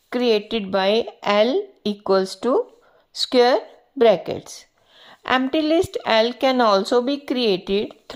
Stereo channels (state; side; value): identical; both; correlation 1.00